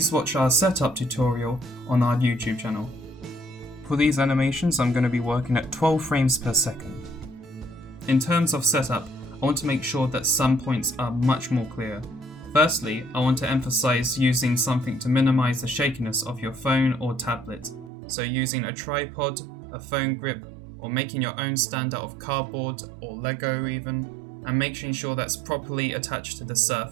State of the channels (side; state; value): left; drops out; at 17.9 s